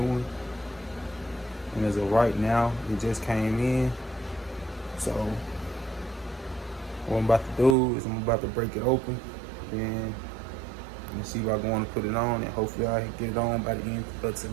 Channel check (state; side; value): drops out; left; at 7.8 s